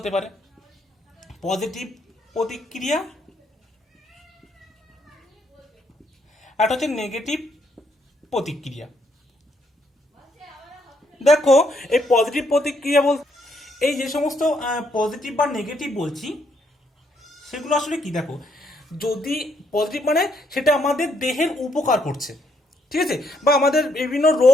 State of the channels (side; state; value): both; normal; correlation 0.73